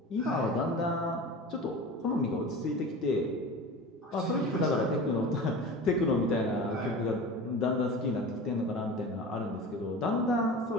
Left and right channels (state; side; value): normal; both; correlation 0.34